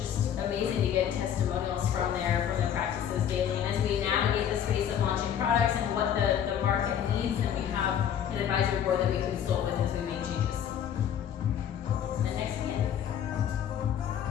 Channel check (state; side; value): quieter; right; 9.3 dB